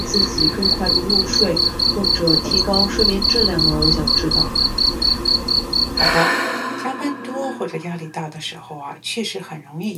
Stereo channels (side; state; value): both; identical; correlation 1.00